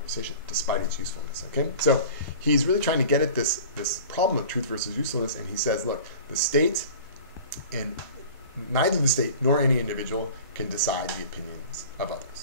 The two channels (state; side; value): inverted; both; correlation -0.41